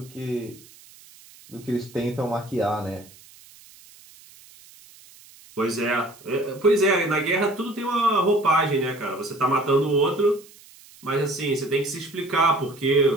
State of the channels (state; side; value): noise; right; hiss, 23 dB below the sound